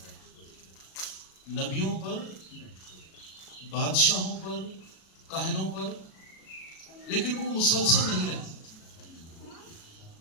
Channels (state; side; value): late; right; 37 ms